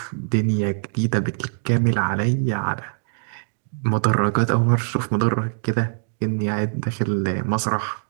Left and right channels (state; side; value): silent; left; digital silence